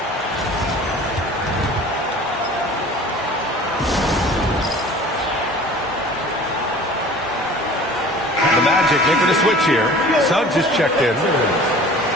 The Magic making a switch here. Suggs is checked in.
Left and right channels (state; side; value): normal; both; correlation 0.45